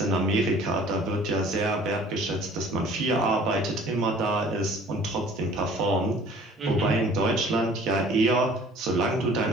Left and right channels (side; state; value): both; normal; correlation 0.51